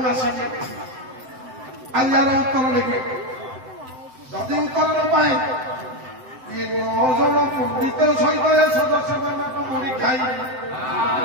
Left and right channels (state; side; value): late; left; 7.8 ms